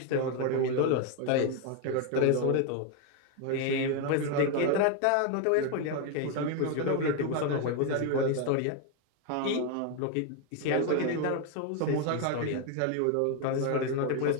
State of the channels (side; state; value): both; different; correlation 0.01